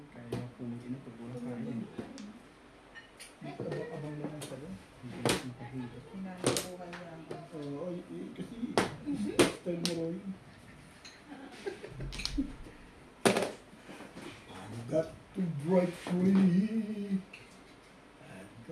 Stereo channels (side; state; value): both; identical; correlation 1.00